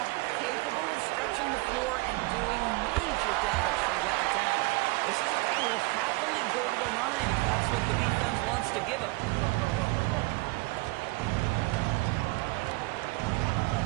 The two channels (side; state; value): left; quieter; 24.2 dB